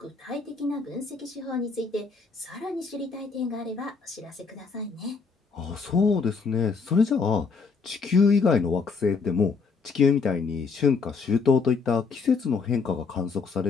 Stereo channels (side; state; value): right; quieter; 4.9 dB